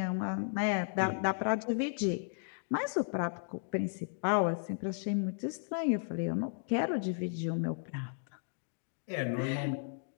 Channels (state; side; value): silent; right; digital silence